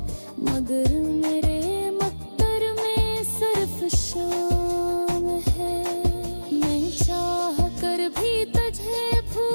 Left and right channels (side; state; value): both; inverted; correlation -1.00